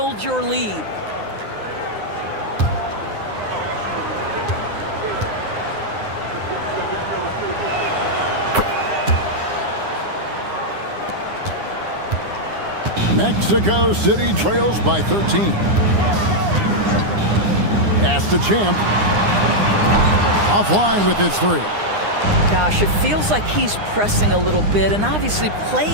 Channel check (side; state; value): left; late; 9.8 ms